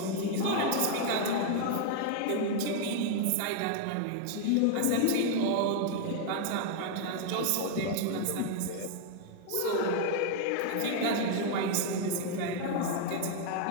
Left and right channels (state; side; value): different; both; correlation 0.00